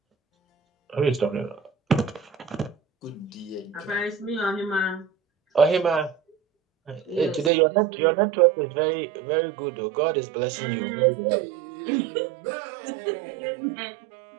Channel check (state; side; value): drops out; left; at 7.5 s